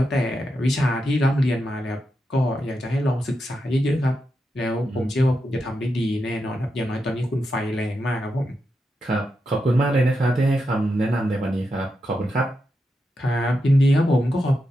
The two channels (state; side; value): normal; both; correlation 0.86